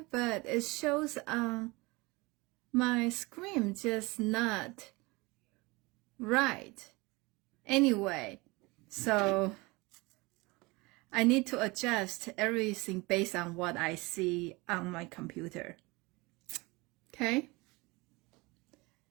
but it shows my screen just not right. Anyway, so I need to adjust everything based on what I see on my computer. Okay?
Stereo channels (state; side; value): quieter; left; 24.3 dB